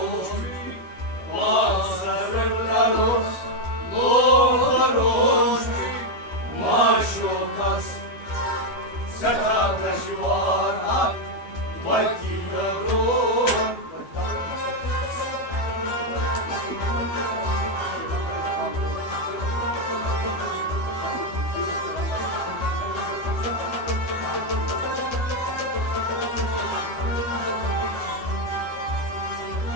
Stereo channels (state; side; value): late; right; 12 ms